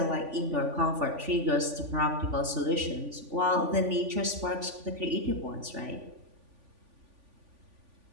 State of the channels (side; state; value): left; late; 3.5 ms